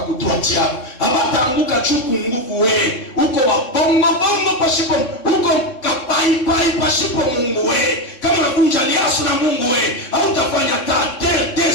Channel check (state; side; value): late; right; 3.7 ms